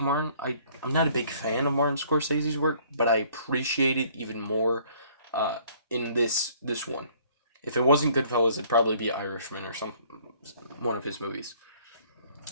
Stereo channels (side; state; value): both; inverted; correlation -0.59